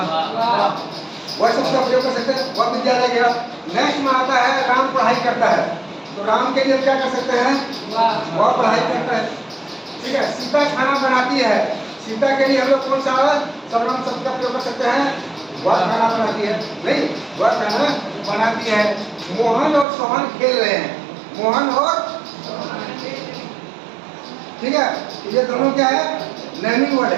शब्द का प्रयोग कर सकते हैं, वह विद्यालय गया। नेक्स्ट में आता है राम पढ़ाई करता है, तो राम के लिए क्या कर सकते हैं? वह पढ़ाई करता है। ठीक है। सीता खाना बनाती है, सीता के लिए हम लोग कौन सा सर्वनाम शब्द का प्रयोग कर सकते हैं? वह खाना बनाती है, नहीं, वह खाना बनाती है। मोहन और सोहन खेल रहे हैं, मोहन और, ठीक है, ये दोनों क्या है? नेमिंग वर्ड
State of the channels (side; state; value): left; drops out; at 19.9 s